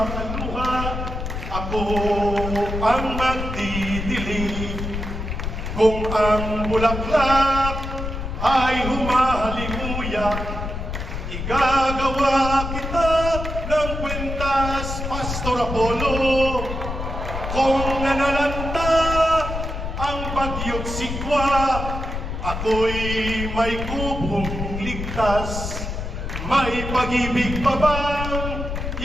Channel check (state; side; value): noise; left; rumble, 5 dB below the sound